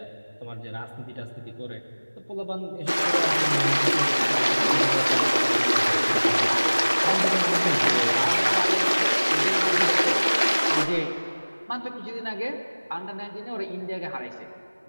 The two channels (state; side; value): inverted; both; correlation -1.00